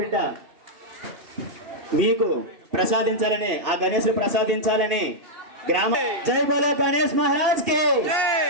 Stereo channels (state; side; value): late; left; 2.8 ms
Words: మీకు ప్రసాదించాలని, ఆ గణేశుడు ప్రసాదించాలని గ్రామ జై బోలో గణేష్ మహారాజ్ కి,